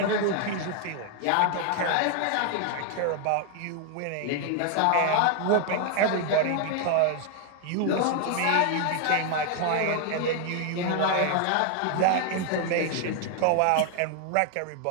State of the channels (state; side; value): different; both; correlation 0.00